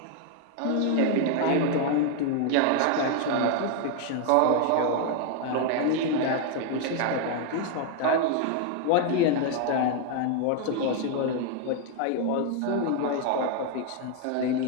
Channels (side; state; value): both; different; correlation 0.00